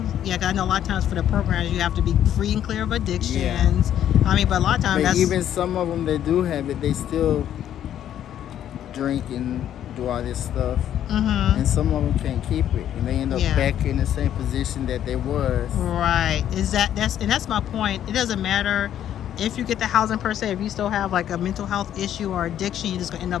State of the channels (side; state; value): right; quieter; 10.7 dB